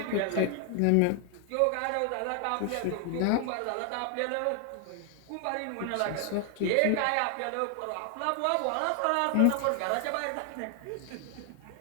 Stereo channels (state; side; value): different; both; correlation 0.00